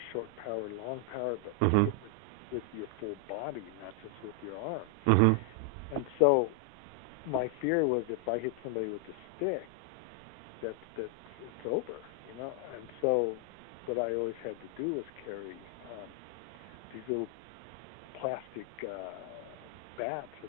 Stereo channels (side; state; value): both; normal; correlation 0.00